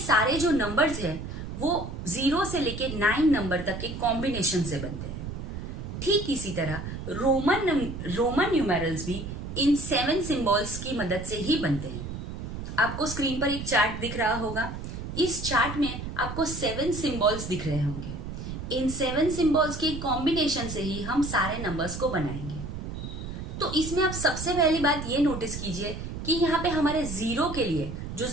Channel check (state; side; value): noise; right; rumble, 7 dB below the sound